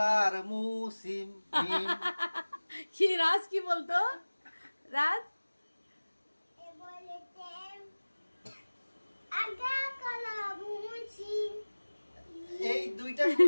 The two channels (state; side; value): inverted; both; correlation -1.00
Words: মুসিম মিম। কি রাজ কি বলতো রাজ? এই দুইটা